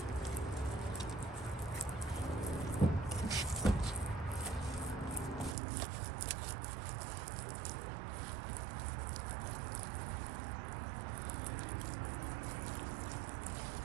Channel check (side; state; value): left; drops out; at 5.6 s